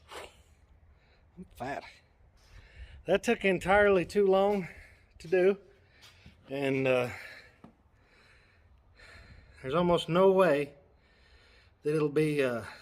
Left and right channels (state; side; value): identical; both; correlation 1.00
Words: I'm fat. That took entirely too long to do, and there's almost no way that it'll be that